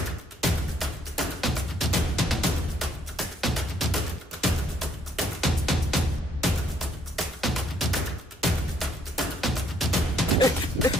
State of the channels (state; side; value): normal; both; correlation 0.67